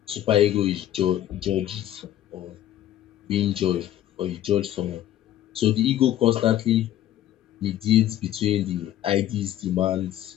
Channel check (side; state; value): right; quieter; 12.4 dB